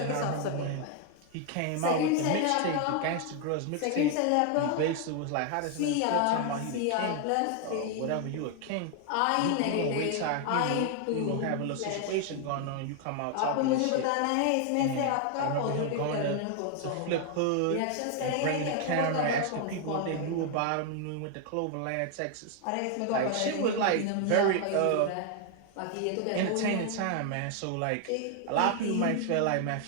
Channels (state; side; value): different; both; correlation 0.00